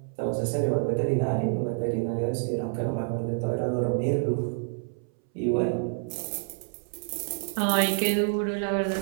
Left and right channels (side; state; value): left; silent; 59 dB below the other